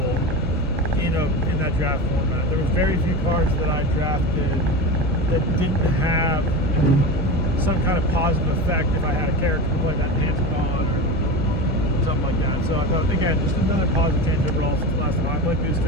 in that draft format. There was very few cards that I drafted that didn't have some kind of positive effect if I had a character who played that Pantacon or something like that. So I thought, again, just another positive change overall since the last time I played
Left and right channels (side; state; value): both; normal; correlation 0.26